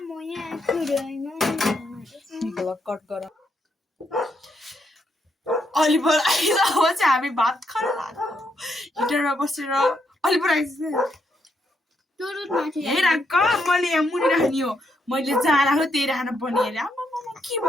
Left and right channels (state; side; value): normal; both; correlation 0.77